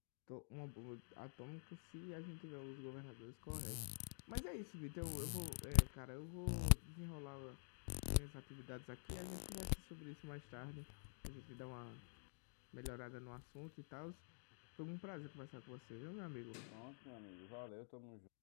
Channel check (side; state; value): right; silent; digital silence